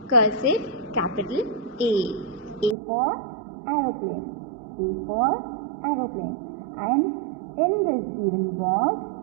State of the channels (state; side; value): drops out; left; at 2.8 s